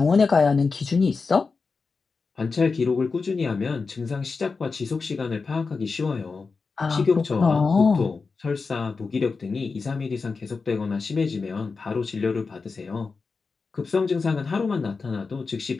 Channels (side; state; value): right; quieter; 4.6 dB